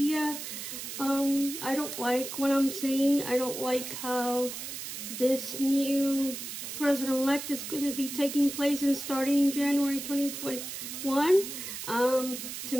I don't like what I'm seeing. I don't like how this new president-elect is going to be taking place and starting in January 2021. To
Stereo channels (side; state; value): right; noise; hiss, 7 dB below the sound